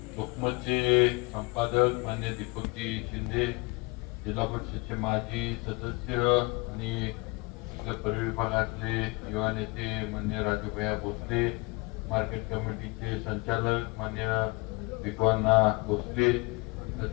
लोकमतचे संपादक मान्य दीपकजी शिंदे, जिल्हा परिषदचे माजी सदस्य आणि आपल्या परिविभागातले युवा नेते मान्य राजूभैया भोसले, मार्केट कमिटीचे संचालक मान्य विक्वाना भोसले,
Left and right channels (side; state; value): right; quieter; 26.4 dB